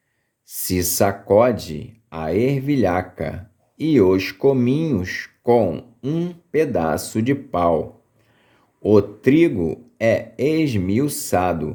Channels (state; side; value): identical; both; correlation 1.00